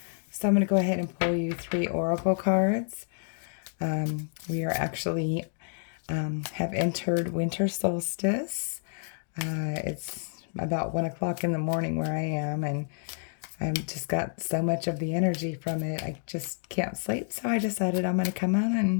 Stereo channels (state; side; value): silent; right; 58 dB below the other